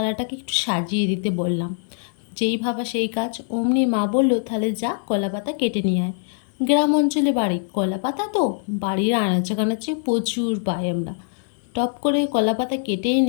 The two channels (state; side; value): silent; right; digital silence